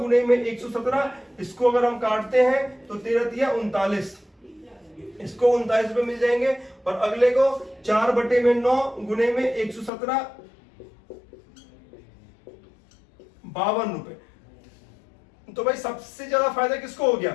में 117। इसको अगर हम काटते हैं तो 13×3 = 39, इसको 39 रुपए मिल जाएंगे। और अगले को 4/9 गुणे में 117 52 रुपए। तो भाई सबसे ज्यादा फायदा किसको हो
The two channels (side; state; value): right; drops out; at 9.9 s